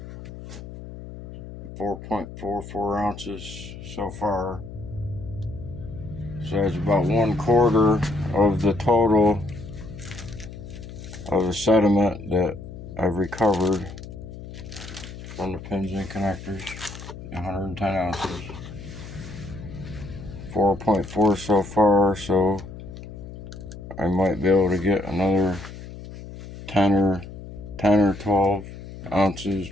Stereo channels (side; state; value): left; noise; hum, 13 dB below the sound